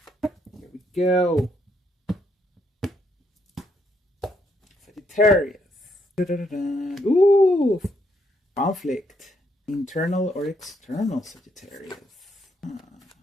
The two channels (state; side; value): normal; both; correlation 0.74